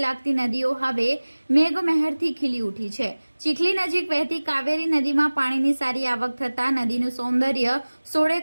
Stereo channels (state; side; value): inverted; both; correlation -1.00